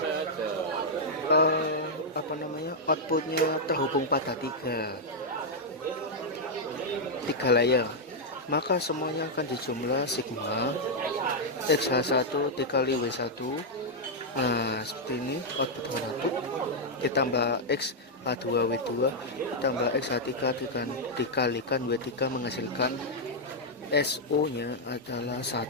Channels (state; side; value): normal; both; correlation -0.03